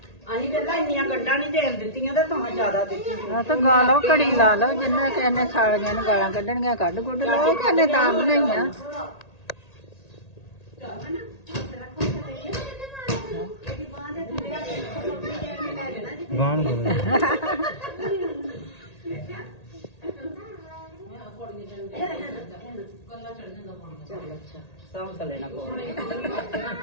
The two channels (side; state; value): right; late; 1.8 ms